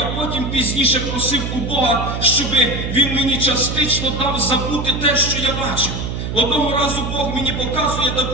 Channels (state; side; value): noise; right; hum, 4 dB below the sound